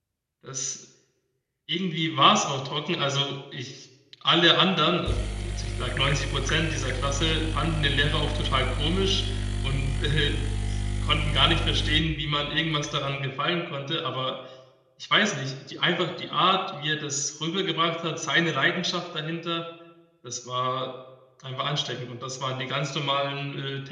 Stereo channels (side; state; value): both; identical; correlation 1.00